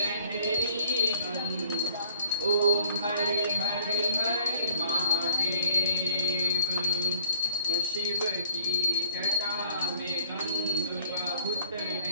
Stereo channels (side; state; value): both; inverted; correlation -0.61